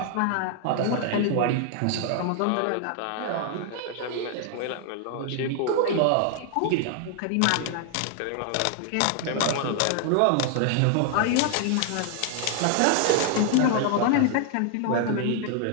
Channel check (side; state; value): both; different; correlation 0.00